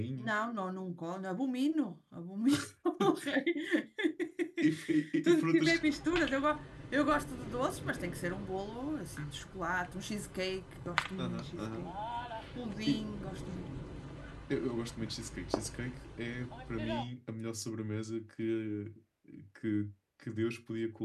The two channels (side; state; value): both; identical; correlation 1.00